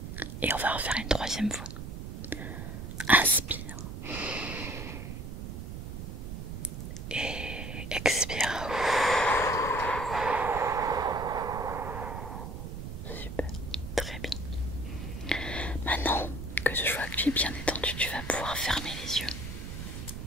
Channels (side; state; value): right; noise; rumble, 8 dB below the sound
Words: Et on va refaire une troisième fois. Inspire. Et expire. Super. Très bien. Maintenant que je vois que tu es bien détendu, tu vas pouvoir fermer les